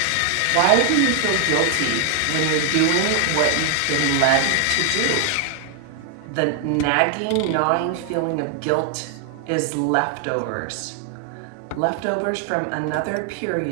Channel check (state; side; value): different; both; correlation 0.00